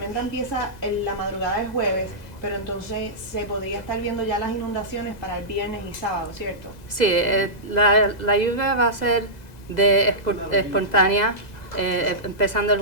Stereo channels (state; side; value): late; right; 2.0 ms